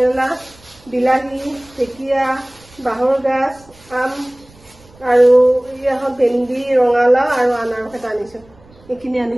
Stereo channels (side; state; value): right; noise; rumble, 27 dB below the sound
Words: বিলাহী ঢেকীয়া বাহৰ গাছ আম আৰু ইয়া হল ভেন্দি ৰঙালাও আৰু আনাৰস এটা আনিছো এইখিনি